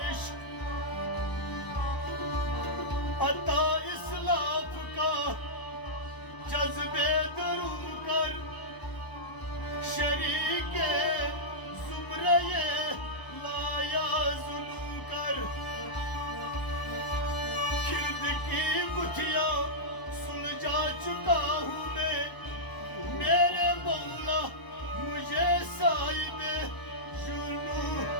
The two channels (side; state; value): right; late; 1.0 ms